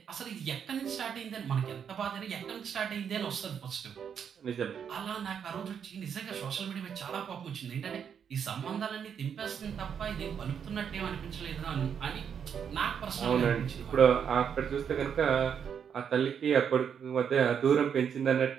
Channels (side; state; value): left; quieter; 7.7 dB